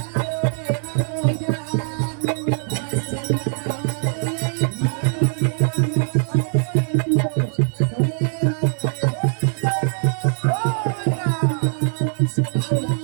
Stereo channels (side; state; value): left; silent; digital silence